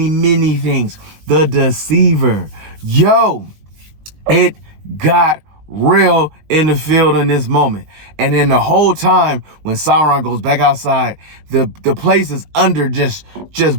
things. The Deceiver. Yo, it got real in the field in this moment. And then the whole time when Sauron goes back outside, the place is under just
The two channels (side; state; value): left; late; 19 ms